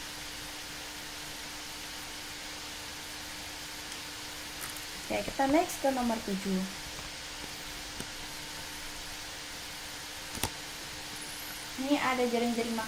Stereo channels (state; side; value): identical; both; correlation 1.00